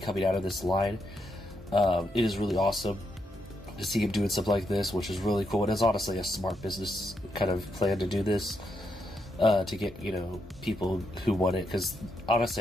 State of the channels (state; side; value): normal; both; correlation 0.80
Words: out of this line. It is really awesome to see him doing something like this, which is really cool. It is honestly a smart business kind of plan to do this, to get, people who want it, because